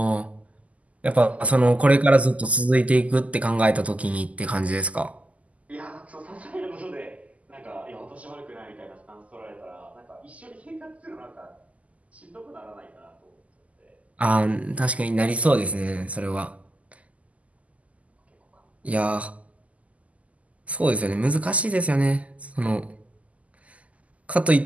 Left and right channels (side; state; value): left; late; 0.070 ms